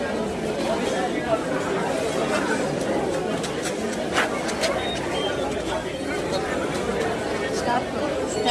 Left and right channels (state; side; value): identical; both; correlation 1.00